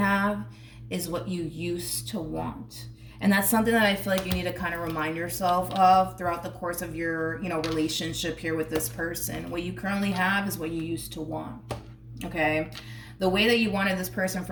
is what you used to want. And that's something that I feel like you need to kind of remind yourself of throughout the course of your, you know, relationship here with this person. What you currently have is what you used to want, okay? The way that you wanted this person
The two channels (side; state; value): both; identical; correlation 1.00